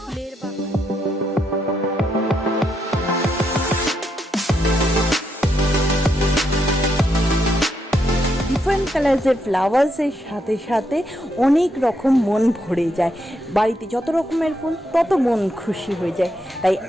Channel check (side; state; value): both; normal; correlation 0.79